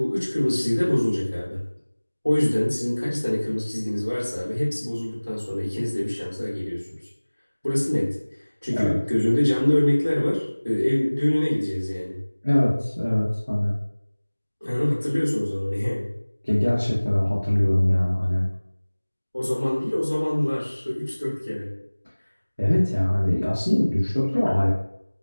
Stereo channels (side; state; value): both; inverted; correlation -1.00